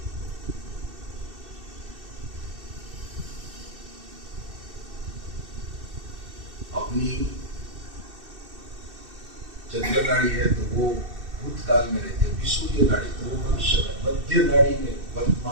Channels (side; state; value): left; late; 2.6 ms